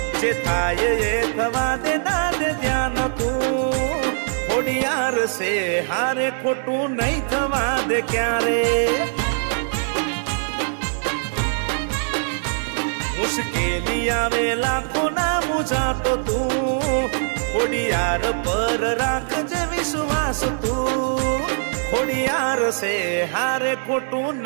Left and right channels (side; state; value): left; silent; digital silence